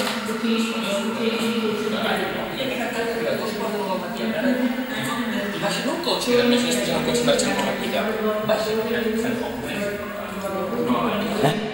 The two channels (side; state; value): both; identical; correlation 1.00